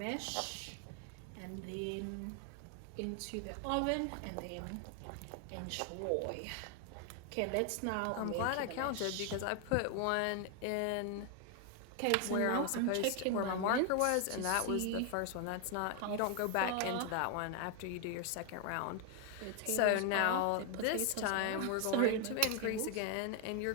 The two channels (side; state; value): both; different; correlation 0.01